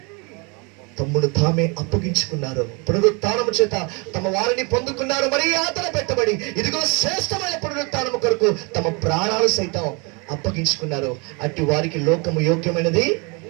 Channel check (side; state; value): left; quieter; 30.7 dB